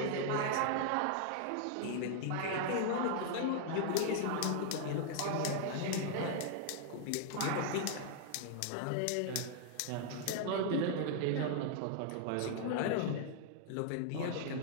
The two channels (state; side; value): different; both; correlation -0.01